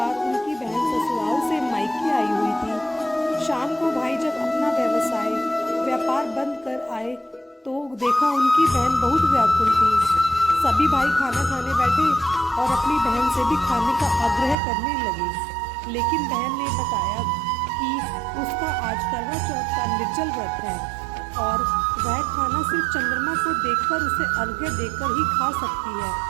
उनकी बहन ससुराल से मायके आई हुई थी। शाम को भाई जब अपना व्यापार बंद कर आए तो देखा उनकी बहन बहुत व्याकुल थी। सभी भाई खाना खाने बैठे और अपनी बहन से भी खाने का आग्रह करने लगे, लेकिन बहन ने बताया कि उसका आज करवा चौथ का निर्जल व्रत है और वह खाना सिर्फ चंद्रमा को देखकर उसे अर्घ्य देकर ही खा सकती है।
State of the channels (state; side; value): drops out; left; at 14.6 s